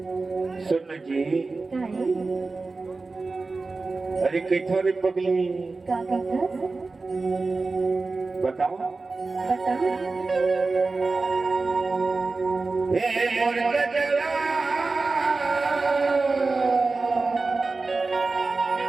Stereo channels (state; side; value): quieter; left; 3.8 dB